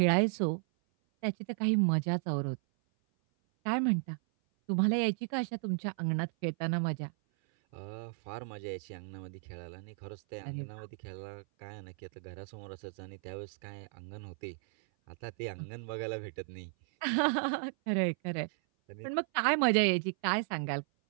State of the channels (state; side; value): silent; left; 55 dB below the other